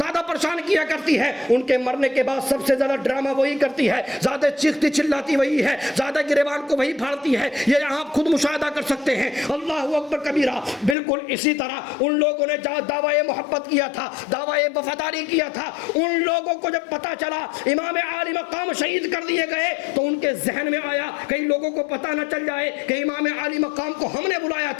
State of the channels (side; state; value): right; drops out; at 11.0 s